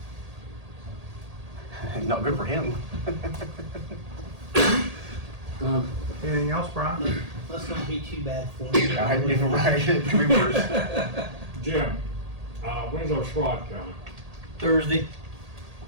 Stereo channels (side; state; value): left; late; 1.8 ms